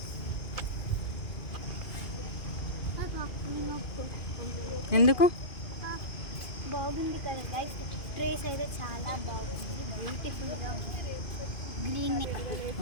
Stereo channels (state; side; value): late; right; 2.5 ms